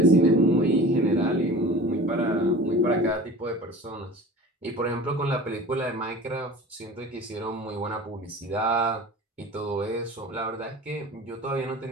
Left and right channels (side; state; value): both; normal; correlation 0.40